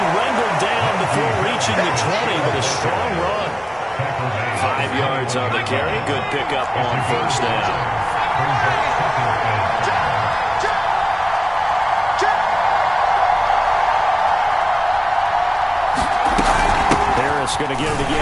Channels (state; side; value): identical; both; correlation 1.00